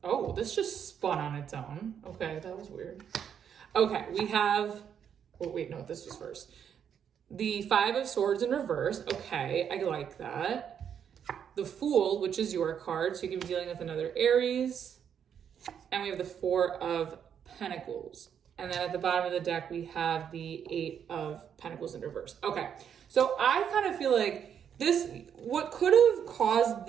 Oh, this just spun on its own. Okay, that was weird. Okay, we have, this was first. The Five of Swords in reverse. Okay, I like that. The Fool, which is your card, so you could be dealing with another Aries. And we have the Four of Pentacles. And then at the bottom of the deck, we have the Eight of Pentacles in reverse. Okay, so I kind of feel like what could have caused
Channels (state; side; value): quieter; left; 8.2 dB